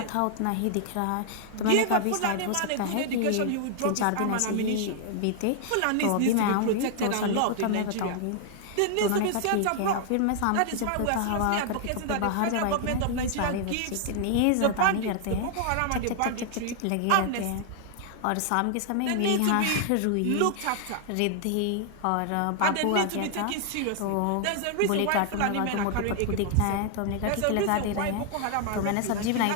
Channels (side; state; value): both; different; correlation 0.00